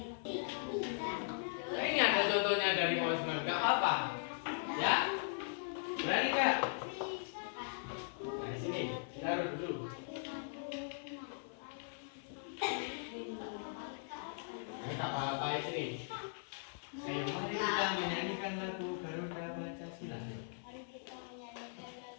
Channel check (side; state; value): right; silent; 52 dB below the other